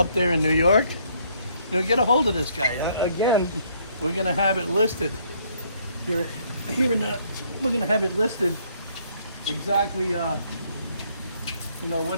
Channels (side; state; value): both; inverted; correlation -0.67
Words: there in New York, get a hold of this guy. Again, we're gonna have it listed here in the. We're gonna have it listed exactly.